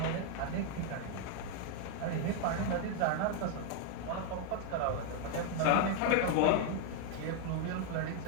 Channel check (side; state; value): both; different; correlation 0.00